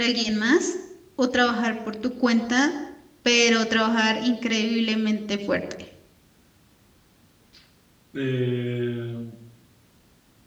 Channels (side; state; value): both; identical; correlation 1.00